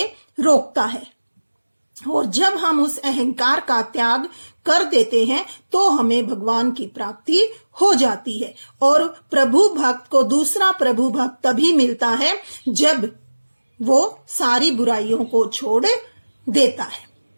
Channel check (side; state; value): both; inverted; correlation -1.00